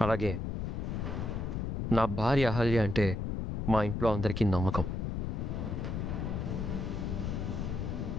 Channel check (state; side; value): noise; left; rumble, 2 dB below the sound